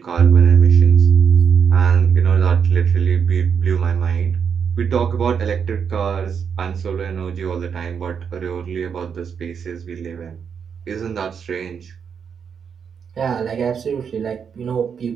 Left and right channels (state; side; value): quieter; left; 6.9 dB